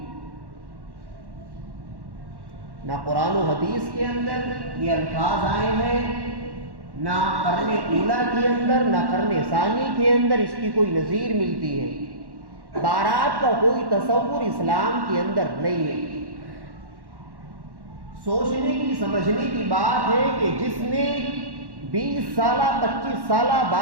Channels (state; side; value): late; left; 1.1 ms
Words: نہ قرآن و حدیث کے اندر یہ الفاظ آئے ہیں، نہ قرن اولا کے اندر نہ قرن ثانی کے اندر اس کی کوئی نظیر ملتی ہے۔ بارات کا کوئی تصور اسلام کے اندر نہیں ہے۔ سوچنے کی سمجھنے کی بات ہے کہ جس نے 20 سالہ 25 سالہ